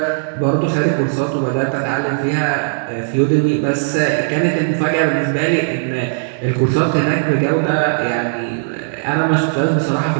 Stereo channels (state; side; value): silent; left; digital silence